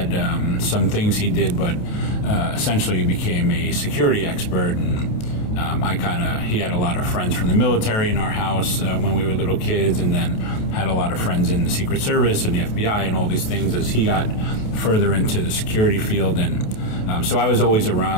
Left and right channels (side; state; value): right; late; 28 ms